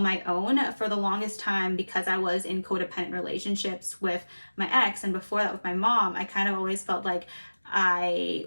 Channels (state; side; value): inverted; both; correlation -1.00